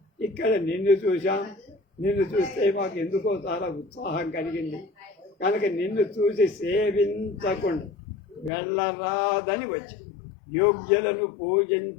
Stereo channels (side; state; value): right; drops out; at 8.5 s